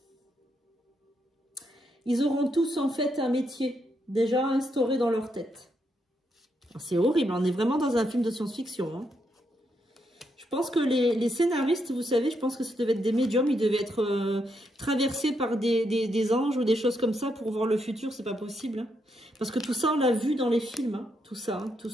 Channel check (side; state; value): both; normal; correlation 0.79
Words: ils auront tous en fait un métier déjà instauré dans leur tête. C'est horrible, on est vraiment dans un film de science-fiction, hein. Je pense que les scénaristes, vous savez, je pense que ça devait être des médiums, ils devaient être traversés par des anges ou des choses comme ça pour voir le futur, c'est pas possible, hein. Parce que tout ça, on l'a vu dans les films, hein, tout ça, hein, tout